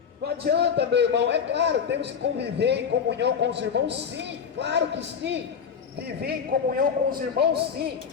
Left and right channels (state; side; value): quieter; right; 6.9 dB